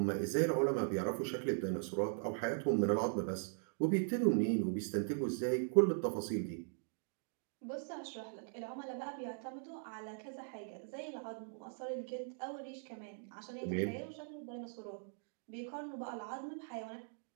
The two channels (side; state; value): left; silent; digital silence